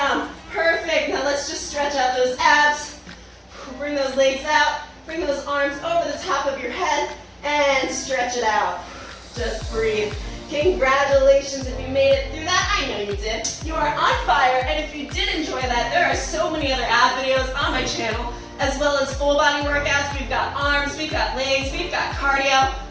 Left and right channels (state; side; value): identical; both; correlation 1.00